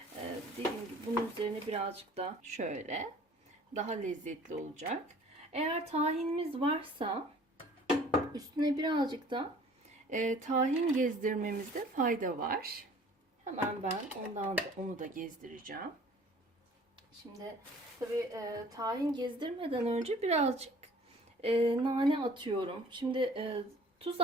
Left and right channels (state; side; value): normal; both; correlation 0.51